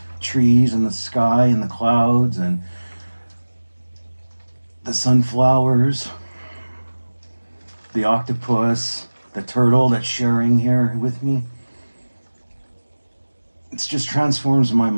trees and the sky and the clouds and the sunflowers, the octopus, the turtle that's sharing here with me. It just transforms my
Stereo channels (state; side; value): inverted; both; correlation -1.00